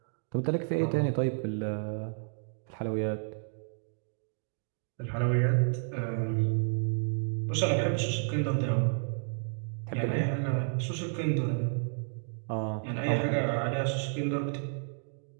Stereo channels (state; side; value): silent; left; digital silence